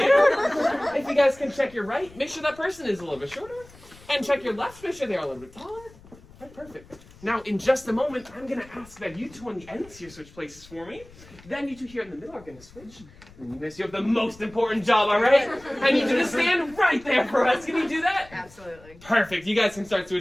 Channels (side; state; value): left; noise; rumble, 23 dB below the sound